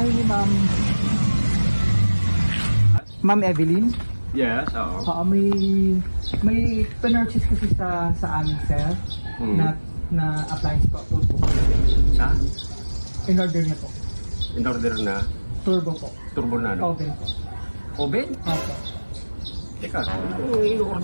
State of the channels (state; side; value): inverted; both; correlation -1.00